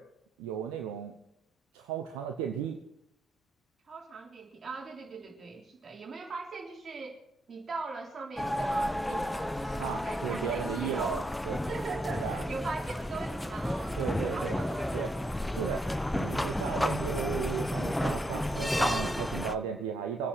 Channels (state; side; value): normal; both; correlation 0.78